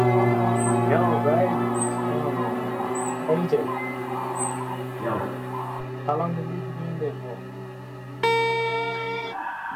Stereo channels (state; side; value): identical; both; correlation 1.00